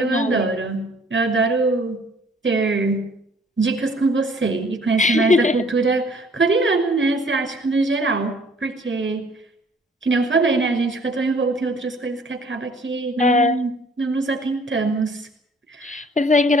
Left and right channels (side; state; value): both; normal; correlation 0.57